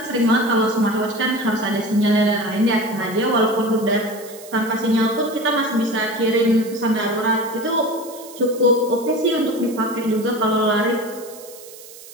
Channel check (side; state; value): right; noise; hiss, 18 dB below the sound